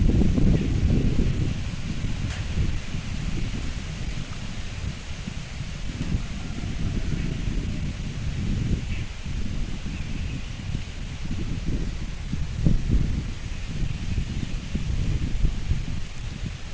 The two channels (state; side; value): identical; both; correlation 1.00